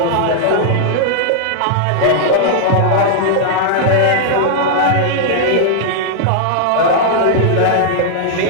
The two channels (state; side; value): different; both; correlation -0.01